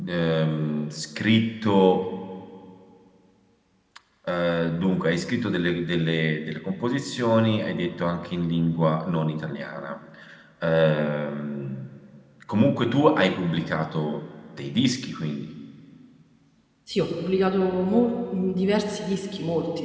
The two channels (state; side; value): identical; both; correlation 1.00